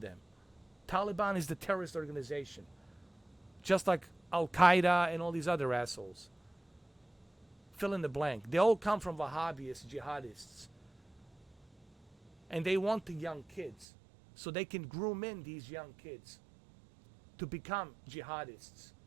them. Taliban is the terrorist organization, just like Al Qaeda and all these other assholes. Fill in the blank. They all come from Wahhabis, jihadists. And they want the young kids so they can groom in these young kids to become jihadists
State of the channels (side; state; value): left; drops out; at 13.9 s